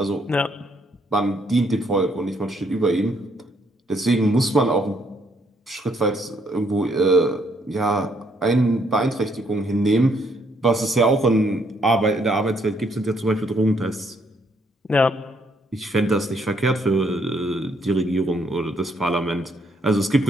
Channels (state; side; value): normal; both; correlation 0.70